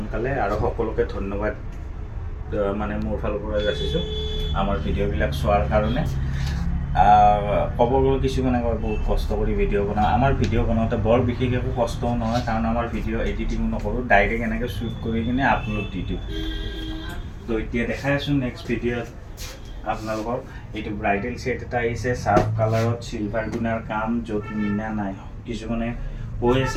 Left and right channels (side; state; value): both; identical; correlation 1.00